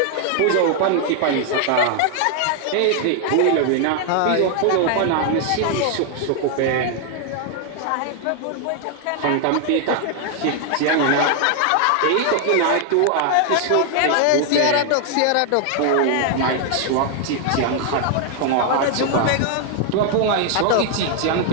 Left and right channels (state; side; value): different; both; correlation 0.00